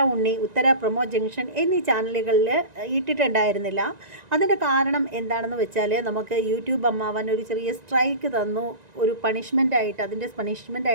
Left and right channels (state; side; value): late; left; 1.9 ms